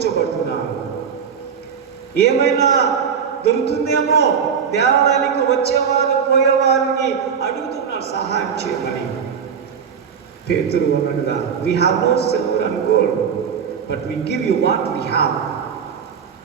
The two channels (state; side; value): quieter; left; 7.1 dB